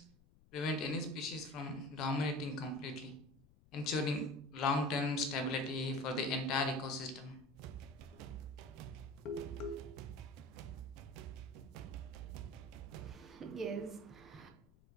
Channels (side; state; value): left; noise; rumble, 26 dB below the sound